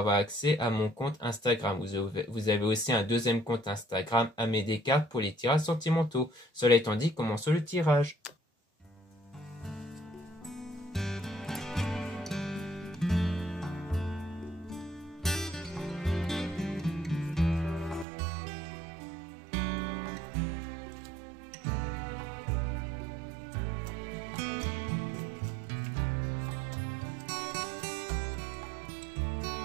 accès à mon compte Instagram. Vous avez aussi un deuxième compte Instagram, Amé Descartes, pour les tirages sentimentaux. Cela étant dit, commençons le tirage.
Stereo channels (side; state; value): left; drops out; at 18.1 s